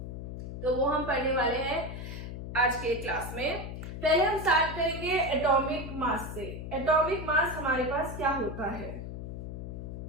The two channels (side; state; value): left; noise; hum, 7 dB below the sound